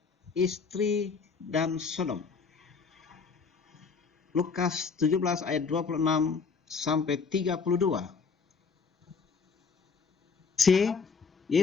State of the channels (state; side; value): quieter; right; 5.2 dB